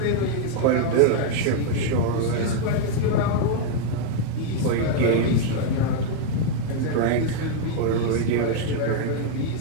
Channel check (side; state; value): both; different; correlation 0.00